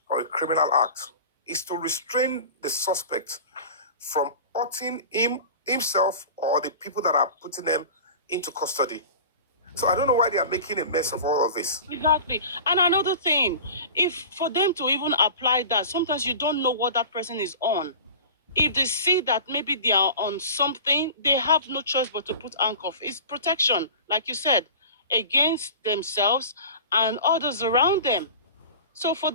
or a criminal act. It's to restrain the suspect from hurting himself or the people that are putting them into custody. So I don't know why they are making a mess of all of this. Exactly. And another thing, if for them to even apply that, sometimes you don't know what that person is on. If they see that maybe they are on something, they have no choice but to put handcuff. It's protection, like you said, against themselves and others around them. So for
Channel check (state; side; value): inverted; both; correlation -0.37